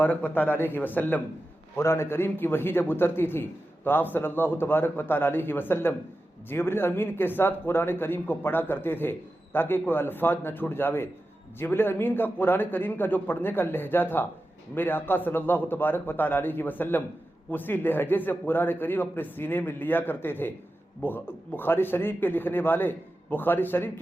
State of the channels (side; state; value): both; normal; correlation 0.92